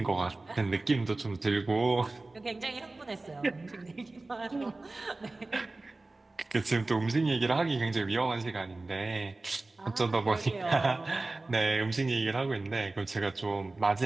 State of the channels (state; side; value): quieter; left; 3.1 dB